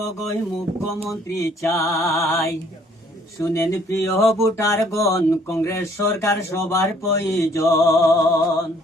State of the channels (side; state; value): both; normal; correlation 0.61